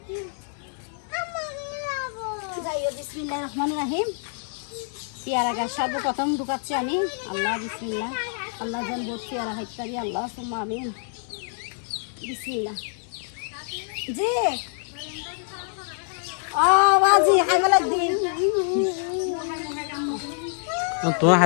যাইও। বিসমিল্লাহির রহমানির রহিম। পেয়ারা গাছ সর্বপ্রথম ঢুকাচ্ছি আমি। আল্লাহ বিসমিল্লাহ, আল্লাহ যেন বহুত পেয়ারা হাইতারি, আল্লাহ সুম্মা আমিন। বিসমিল্লাহ। জি বাজি খাইবে লাগদিন। তোমার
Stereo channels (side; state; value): right; silent; 59 dB below the other